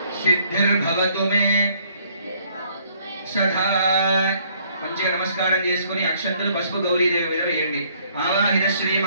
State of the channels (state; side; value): inverted; both; correlation -0.64